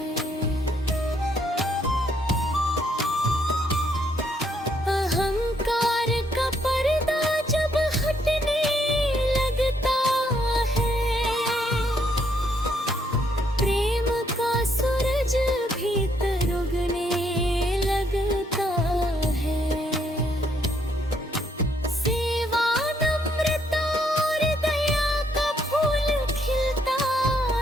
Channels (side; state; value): both; normal; correlation 0.71